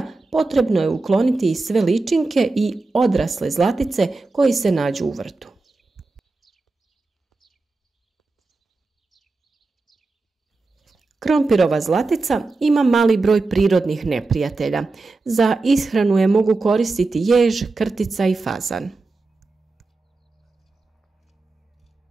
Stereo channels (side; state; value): left; quieter; 3.6 dB